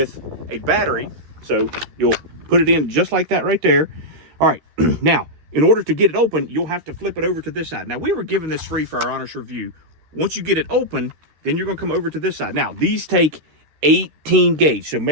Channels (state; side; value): late; left; 13 ms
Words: a battery. So you'll put it in just like that right there. All right, now, in order to get it open, you'll have to flip it over to this side. Now, we were given this free for our honest review. Once you get it open, then you're going to come over to this side. Now, these take 18 gauge, so